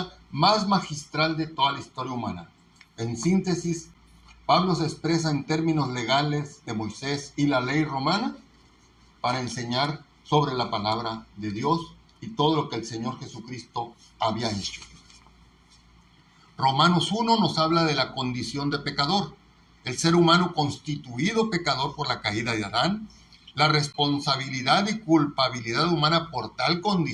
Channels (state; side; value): identical; both; correlation 1.00